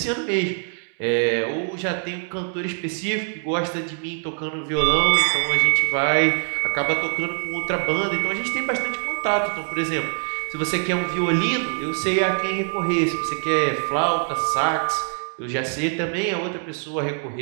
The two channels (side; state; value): left; silent; 57 dB below the other